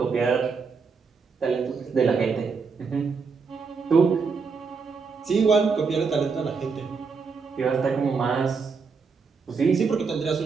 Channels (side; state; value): left; quieter; 5.1 dB